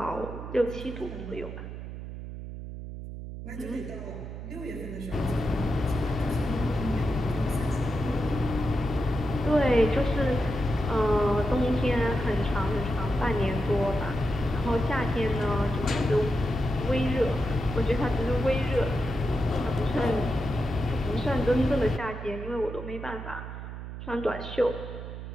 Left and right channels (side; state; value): right; noise; hum, 9 dB below the sound